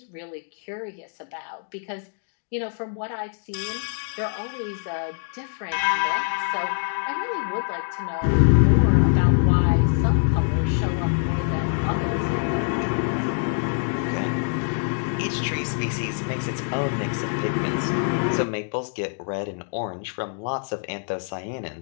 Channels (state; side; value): silent; right; 56 dB below the other